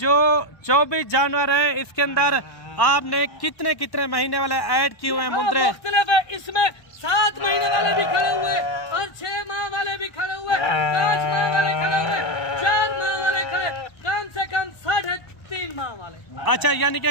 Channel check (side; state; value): right; late; 1.2 ms